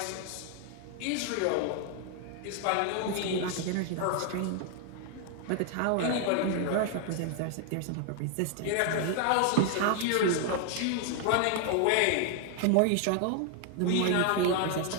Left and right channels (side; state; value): both; different; correlation 0.00